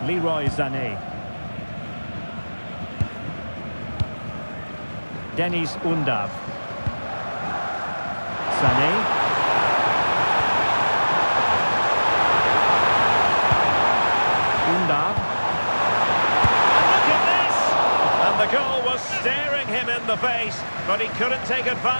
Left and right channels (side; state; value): both; inverted; correlation -1.00